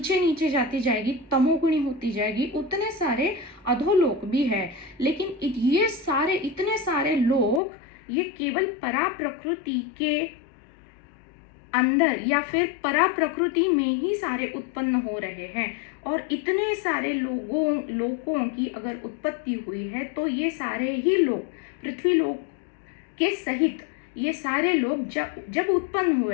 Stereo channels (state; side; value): drops out; right; at 7.6 s